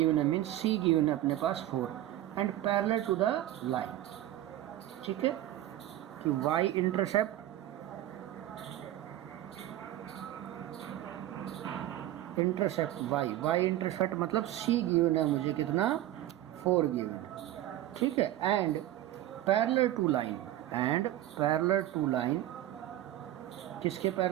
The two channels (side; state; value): left; quieter; 13.8 dB